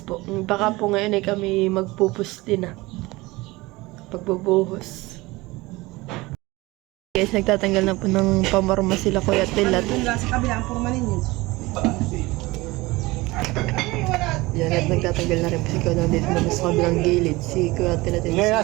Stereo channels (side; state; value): left; quieter; 21.2 dB